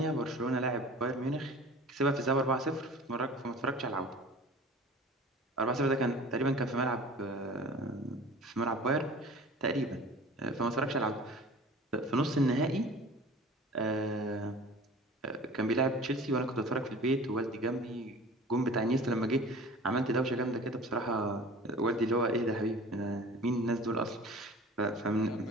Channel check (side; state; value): both; normal; correlation 0.42